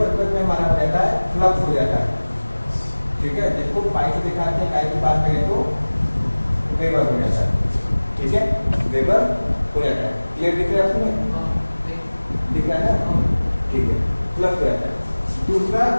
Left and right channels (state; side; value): inverted; both; correlation -1.00